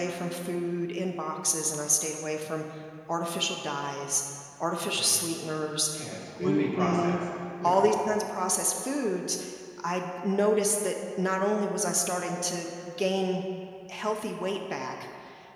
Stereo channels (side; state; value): both; identical; correlation 1.00